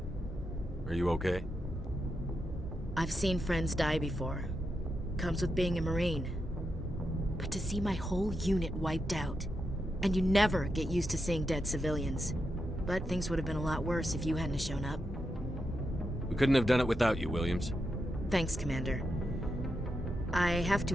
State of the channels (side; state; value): both; normal; correlation 0.85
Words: Are you okay? I've seen friends die before. Comes with being a Marine. But to see my whole unit wiped out, and you never get used to seeing dead civilians. But things would have been a lot worse if you hadn't shown up. We couldn't have done it without you, Williams. Thanks, Commander. I have